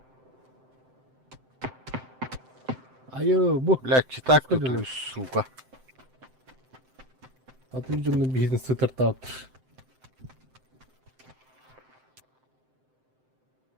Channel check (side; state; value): left; late; 7.7 ms